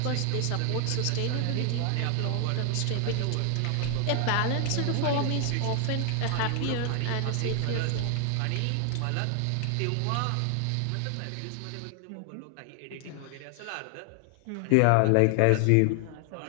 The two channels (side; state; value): both; different; correlation 0.00